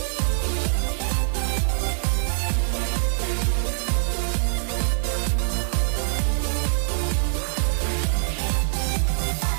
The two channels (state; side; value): silent; left; 63 dB below the other